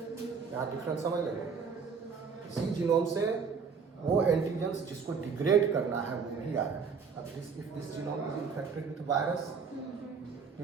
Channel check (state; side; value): quieter; left; 5.6 dB